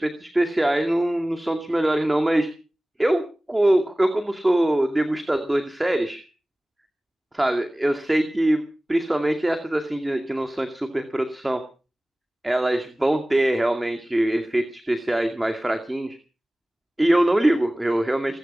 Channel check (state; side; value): normal; both; correlation 0.98